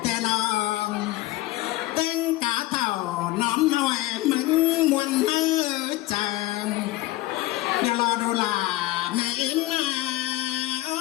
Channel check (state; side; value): quieter; right; 17.9 dB